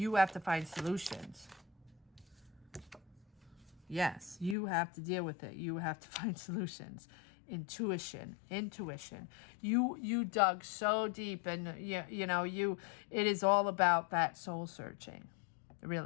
have to find solutions. Yes, you have to deal with it. You have to find solutions. Intuition. You dug so deep, and it is all about that soul searching,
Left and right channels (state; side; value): drops out; right; at 4.5 s